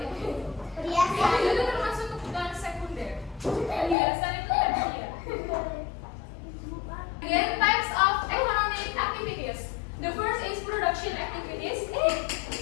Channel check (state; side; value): drops out; right; at 4.0 s